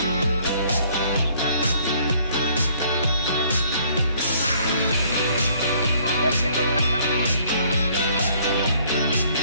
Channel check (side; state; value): both; inverted; correlation -0.61